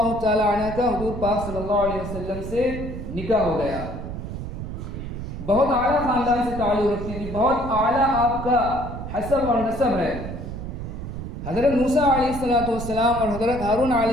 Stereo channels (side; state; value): right; noise; rumble, 7 dB below the sound